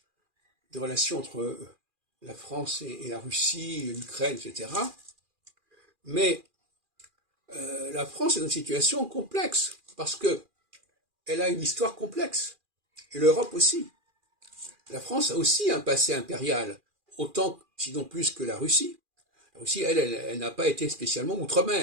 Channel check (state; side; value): late; left; 2.4 ms